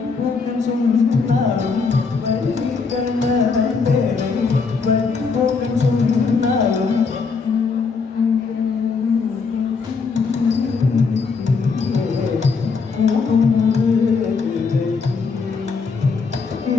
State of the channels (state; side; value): quieter; right; 4.9 dB